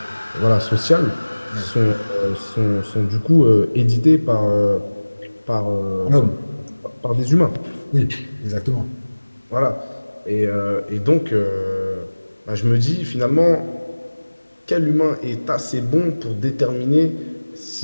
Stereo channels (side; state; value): both; inverted; correlation -1.00